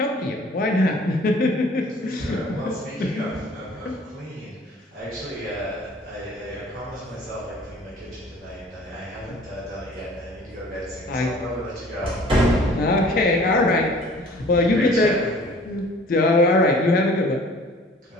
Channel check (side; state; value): both; normal; correlation 0.50